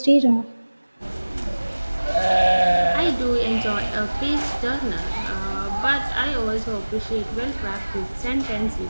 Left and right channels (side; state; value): both; inverted; correlation -1.00